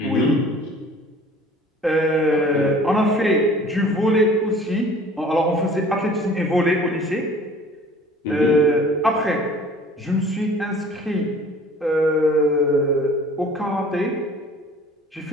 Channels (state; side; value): normal; both; correlation 0.49